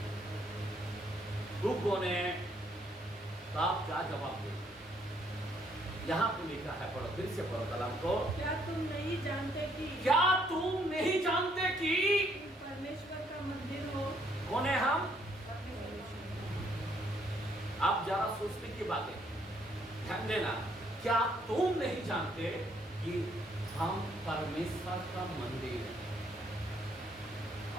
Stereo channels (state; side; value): normal; both; correlation 0.68